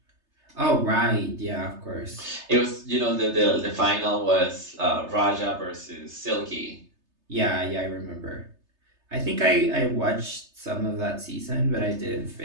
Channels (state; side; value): late; left; 3.3 ms